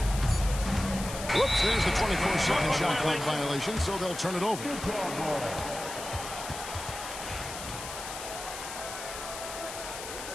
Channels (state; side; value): noise; left; hiss, 9 dB below the sound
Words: Whoops, there's the 24-second shot clock violation, so they'll turn it over.